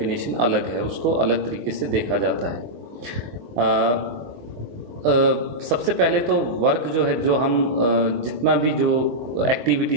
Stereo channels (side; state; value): left; late; 24 ms